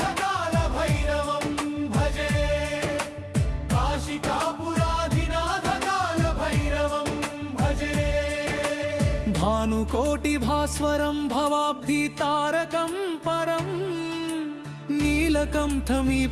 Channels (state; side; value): identical; both; correlation 1.00